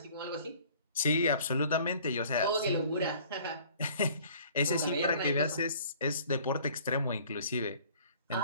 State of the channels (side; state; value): both; inverted; correlation -0.53